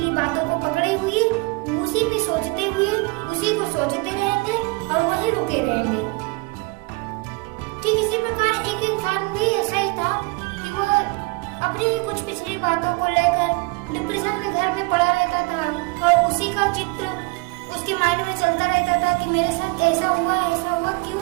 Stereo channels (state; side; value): quieter; left; 26.9 dB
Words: बातों को पकड़े हुए उसी में सोचते हुए उसी को सोचते रहेंगे और वही रुके रहेंगे। ठीक इसी प्रकार एक इंसान भी ऐसा ही था कि वो अपनी ही कुछ पिछली बातों को लेकर डिप्रेशन में घर में पड़ा रहता था और उसी का चित्र उसके माइंड में चलता रहता था कि मेरे साथ ऐसा हुआ, क्यों